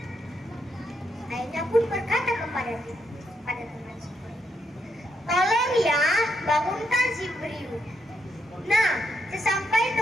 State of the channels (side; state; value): both; normal; correlation 0.79